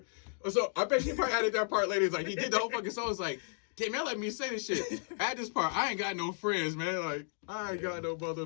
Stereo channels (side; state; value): right; silent; 55 dB below the other